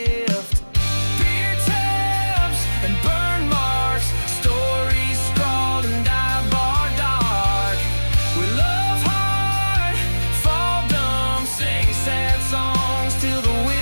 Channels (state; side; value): inverted; both; correlation -1.00